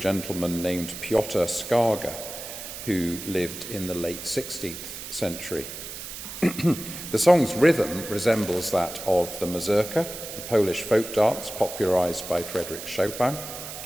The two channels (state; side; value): noise; right; hiss, 10 dB below the sound